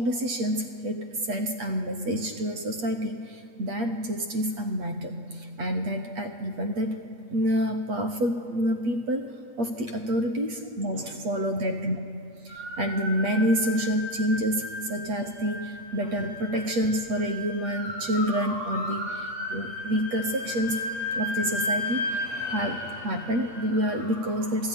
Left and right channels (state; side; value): late; left; 8.4 ms